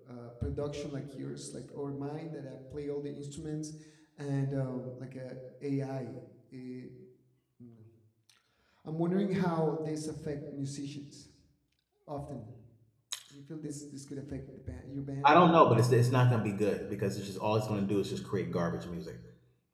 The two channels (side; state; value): both; identical; correlation 1.00